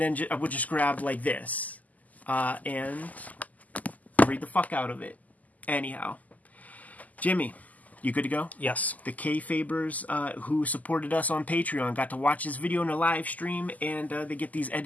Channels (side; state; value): right; late; 0.078 ms